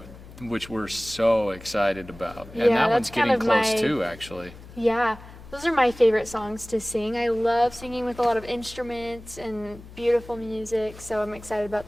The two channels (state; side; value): noise; left; hum, 18 dB below the sound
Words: which we're so excited about. And that one's getting close too, actually. Yeah. Those are my favorite songs to sing. I love singing with a lot of instruments and beautiful music, so I'm excited about